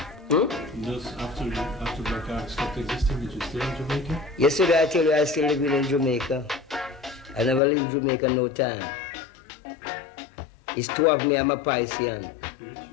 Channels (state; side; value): drops out; right; at 7.6 s